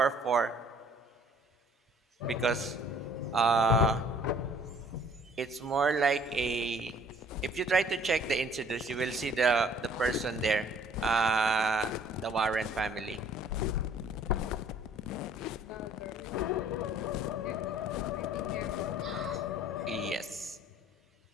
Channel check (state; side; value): normal; both; correlation 0.56